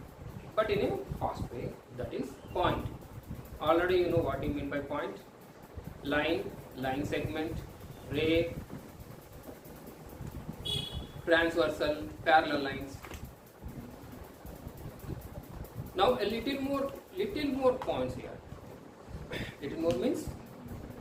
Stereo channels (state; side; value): identical; both; correlation 1.00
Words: but in a fast way, that is point. Already you know what you mean by point. Line, line segment, ray, transversal, parallel lines. Now a little more points here. Little more means